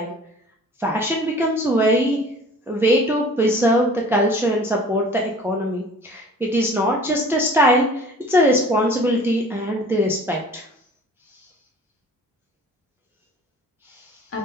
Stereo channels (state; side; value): normal; both; correlation 0.47